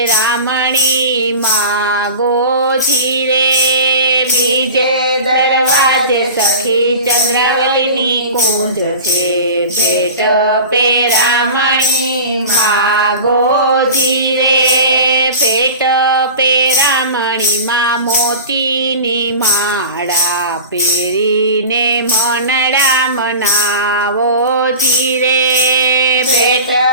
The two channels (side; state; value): both; inverted; correlation -0.35